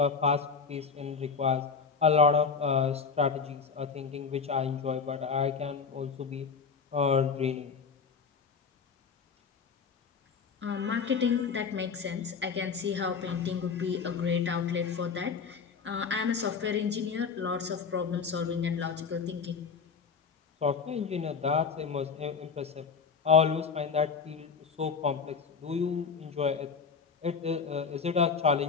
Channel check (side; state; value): right; quieter; 5.6 dB